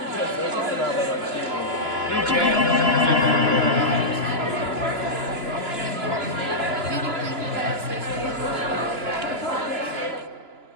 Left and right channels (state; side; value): late; left; 2.9 ms